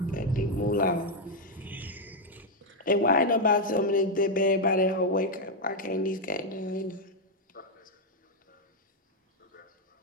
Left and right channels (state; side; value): normal; both; correlation 0.00